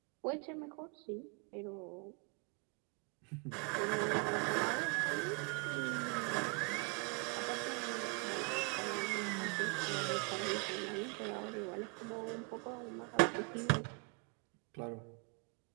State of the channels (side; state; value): left; quieter; 31.8 dB